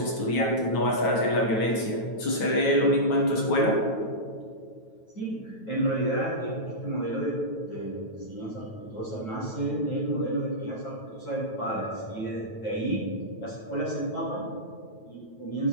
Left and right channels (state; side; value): late; right; 9.2 ms